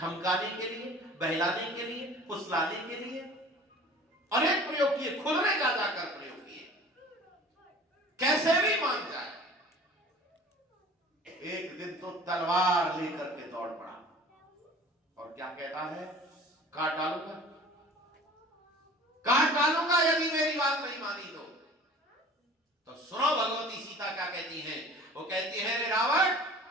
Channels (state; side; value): normal; both; correlation 0.45